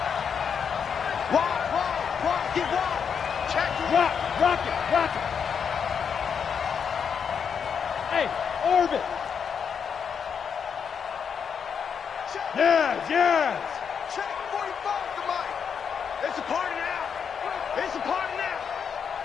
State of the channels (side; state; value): right; quieter; 6.9 dB